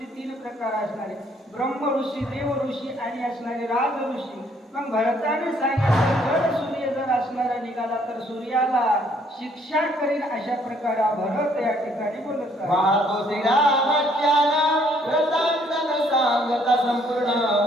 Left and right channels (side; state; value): both; normal; correlation 0.65